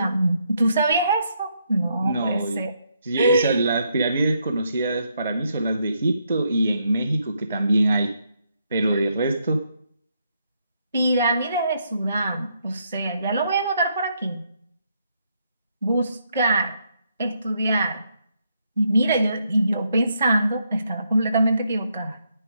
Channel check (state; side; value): inverted; both; correlation -0.76